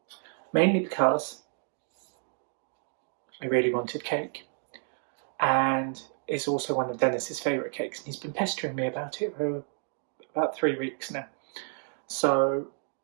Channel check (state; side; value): silent; left; 58 dB below the other